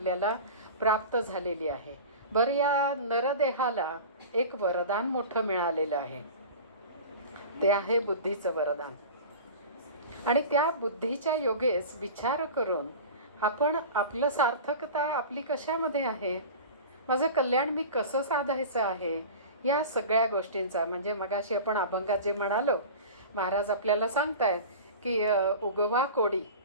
प्राप्त झालेली आहे. बरं, या नरदेहाला एक वरदान मोठं मिळालेलं आहे, ते आहे बुद्धीचं वरदान. आणि त्या बुद्धीच्या योगेस विचार करून आपण आपलं सार्थकता आपली कशामध्ये आहे, माझं कल्याण मी कसं साधायचं आहे, या सगळ्या गोष्टींचा म्हणजे मगाशी आपण अभंगात जे म्हणालो, महाराज आपल्याला सांगतायत की उगवा कोडी.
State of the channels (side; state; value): both; inverted; correlation -0.35